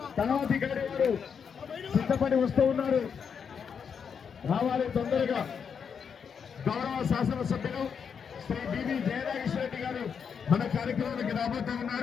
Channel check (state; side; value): quieter; right; 6.8 dB